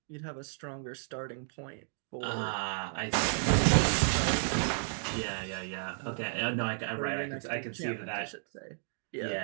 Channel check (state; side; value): silent; left; digital silence